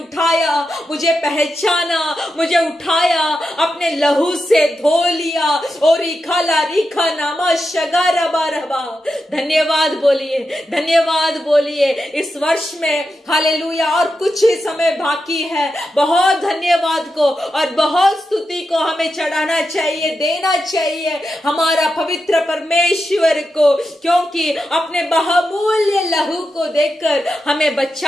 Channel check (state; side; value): normal; both; correlation 0.88